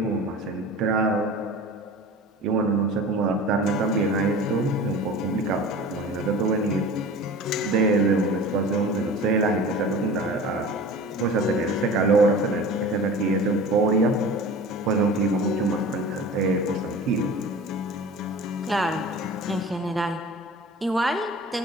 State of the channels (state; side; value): normal; both; correlation 0.38